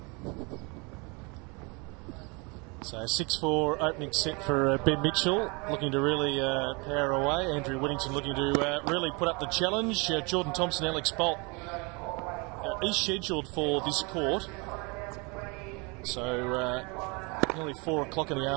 So 6-4 opening set for Ben Mitchell, looking to really power away. Andrew Whittington looking to really put up the challenge. Jordan Thompson, Alex Bolt is scheduled for this court. So nearly 4 o'clock in the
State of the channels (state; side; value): quieter; left; 29.9 dB